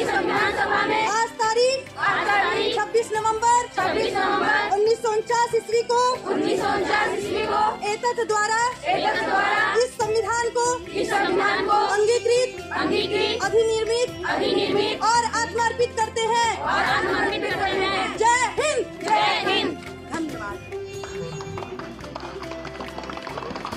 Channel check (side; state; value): both; identical; correlation 1.00